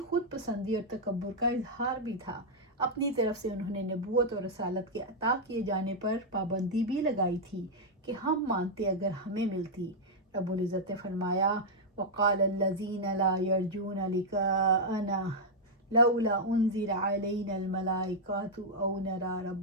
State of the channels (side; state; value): both; normal; correlation -0.04